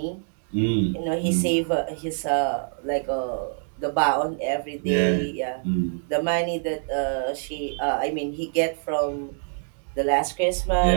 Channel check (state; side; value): silent; left; digital silence